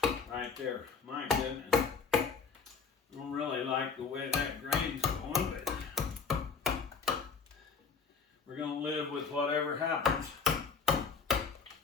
Right there. My goodness. I don't really like the way that grain's going, but we're going to live with whatever happens.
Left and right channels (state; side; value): quieter; right; 5.5 dB